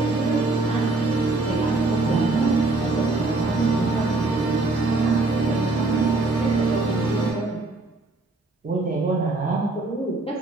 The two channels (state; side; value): quieter; left; 3.3 dB